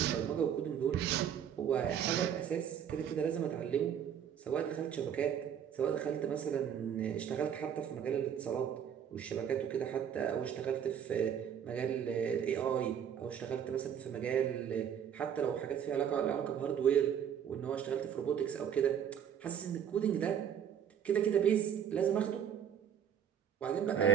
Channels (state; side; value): quieter; left; 8.7 dB